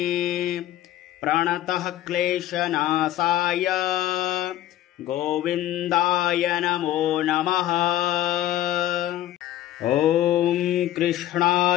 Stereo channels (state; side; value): quieter; right; 13.2 dB